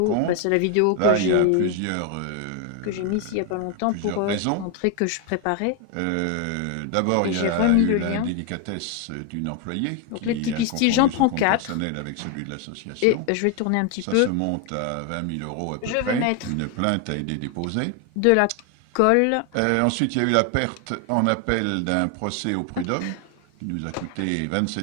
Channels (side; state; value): both; different; correlation 0.01